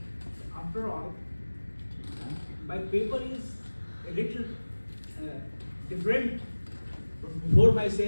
After all, my paper is a little different. Before my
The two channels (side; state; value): both; inverted; correlation -1.00